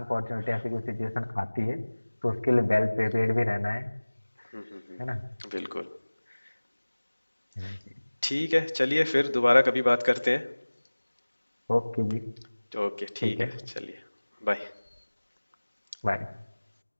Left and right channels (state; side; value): inverted; both; correlation -1.00